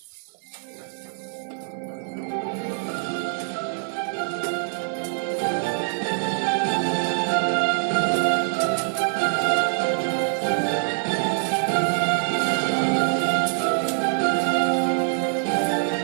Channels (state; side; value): silent; left; digital silence